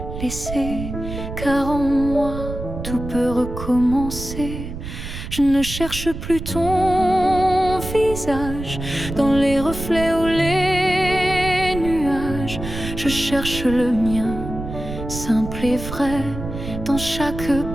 laissé, car en moi tout peut recommencer. Je ne cherche plus ton visage dans les reflets ou les nuages. Je cherche le mien, simple et vrai, dans chaque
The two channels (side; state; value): right; noise; rumble, 8 dB below the sound